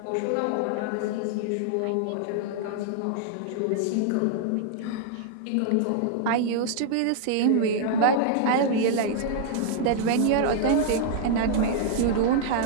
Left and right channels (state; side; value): different; both; correlation -0.01